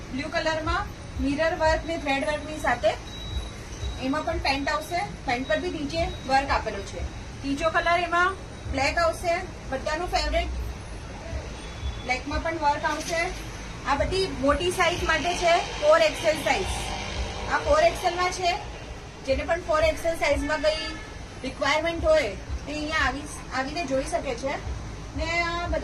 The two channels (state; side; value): identical; both; correlation 1.00